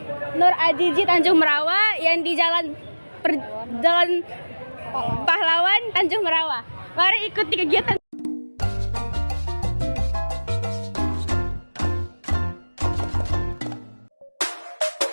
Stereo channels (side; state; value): both; inverted; correlation -1.00